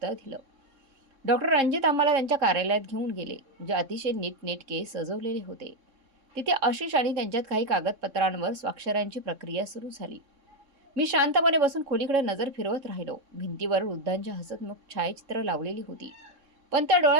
दिलं. डॉक्टर रणजित आम्हाला त्यांच्या कार्यालयात घेऊन गेले, जे अतिशय नीटनेटके सजवलेले होते. तिथे आशिष आणि त्यांच्यात काही कागदपत्रांवर स्वाक्षऱ्यांची प्रक्रिया सुरू झाली. मी शांतपणे बसून खोलीकडे नजर फिरवत राहिलो. भिंतीवर वृद्धांच्या हसतमुख छायाचित्र लावलेली होती, पण त्या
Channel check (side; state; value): left; late; 3.6 ms